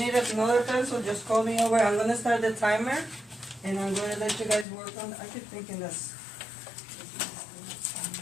another pencil, just call me over. I'm gonna start the timer, and I'm gonna let you guys work on. I keep thinking this.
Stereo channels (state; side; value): drops out; right; at 4.7 s